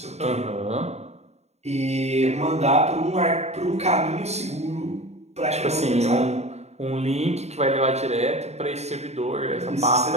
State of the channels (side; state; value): left; late; 0.32 ms